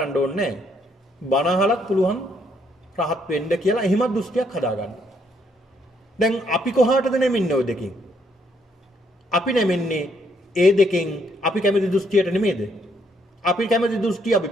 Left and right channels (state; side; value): normal; both; correlation 0.71